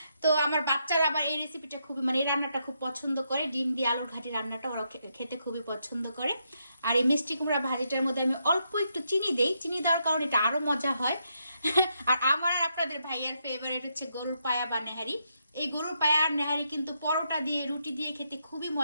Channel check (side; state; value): both; inverted; correlation -0.79